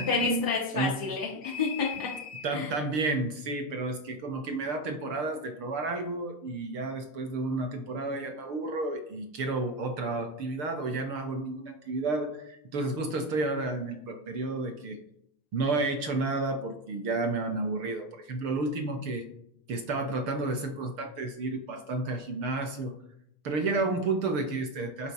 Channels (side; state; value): left; late; 6.7 ms